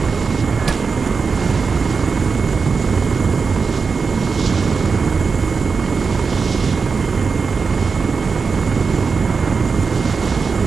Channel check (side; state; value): left; quieter; 5.1 dB